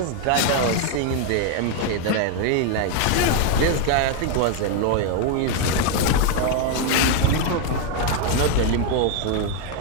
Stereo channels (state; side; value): different; both; correlation 0.01